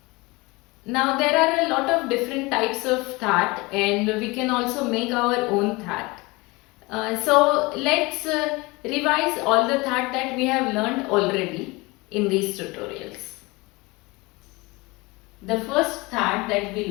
Now there are a lot of different types of that and we can also make our own that. So let's revise all the that we have learned already in these tutorials. The first that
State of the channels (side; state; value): right; quieter; 24.0 dB